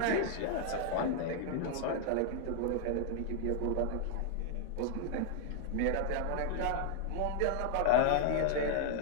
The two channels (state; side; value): different; both; correlation 0.00